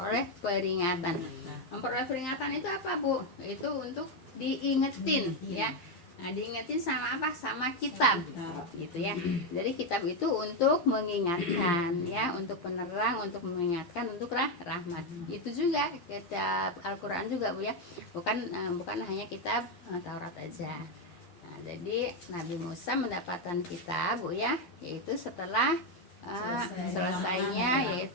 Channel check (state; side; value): late; right; 12 ms